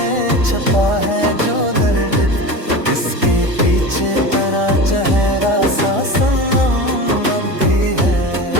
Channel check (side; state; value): left; late; 1.4 ms